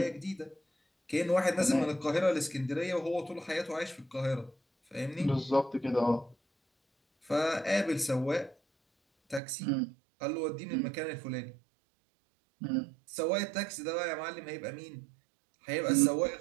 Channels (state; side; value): drops out; left; at 9.4 s